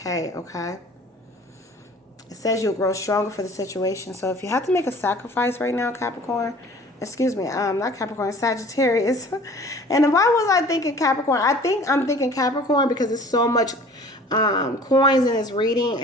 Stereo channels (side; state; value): both; normal; correlation 0.47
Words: Okay. It says you'll grow stronger for the situation. So if you have to make a sacrifice right now, Capricorn, excuse me, not Capricorn, Sagittarius. And why was I thinking Capricorn? I'm thinking Capricorn because there's so much coins in this reading,